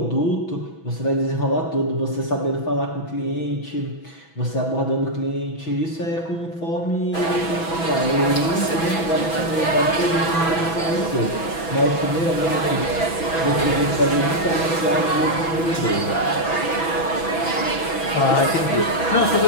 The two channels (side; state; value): right; late; 6.1 ms